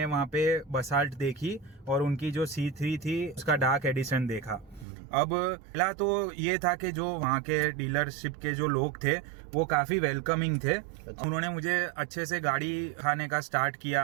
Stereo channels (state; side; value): drops out; left; at 4.9 s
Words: वहाँ पे बसाल्ट देखी और उनकी जो C3 थी उसका डार्क एडिशन देखा। अब पहला तो ये था कि जो वहाँ के डीलरशिप के जो लोग थे वो काफी वेलकमिंग थे। उन्होंने मुझे अच्छे से गाड़ी खाने का स्टार्ट